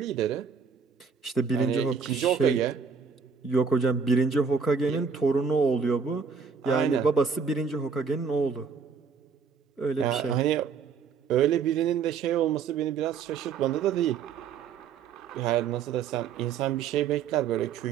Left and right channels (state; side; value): quieter; left; 6.0 dB